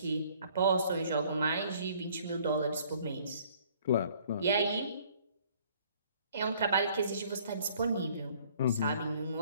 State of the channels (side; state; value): both; inverted; correlation -0.58